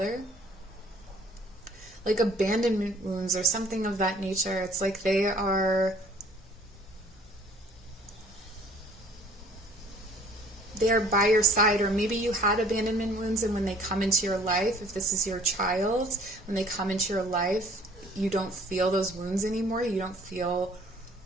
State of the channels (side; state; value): both; normal; correlation 0.55